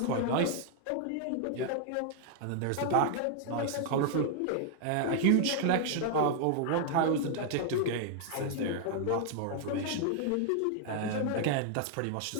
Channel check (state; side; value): different; both; correlation 0.00